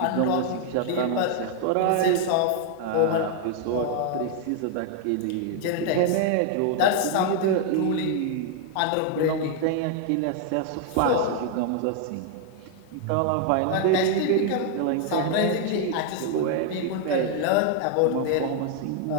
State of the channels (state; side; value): different; both; correlation 0.00